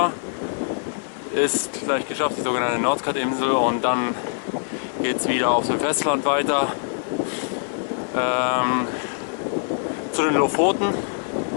ist gleich geschafft, die sogenannte Nordkap-Insel, und dann geht es wieder auf dem Festland weiter zu den Lofoten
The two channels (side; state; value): right; silent; 56 dB below the other